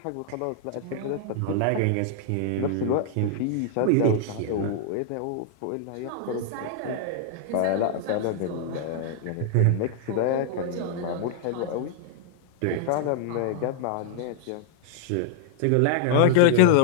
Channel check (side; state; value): both; different; correlation -0.01